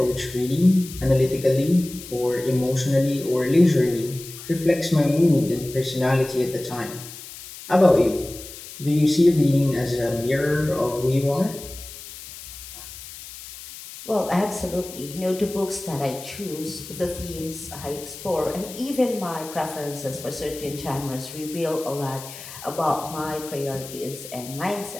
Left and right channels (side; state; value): left; noise; hiss, 14 dB below the sound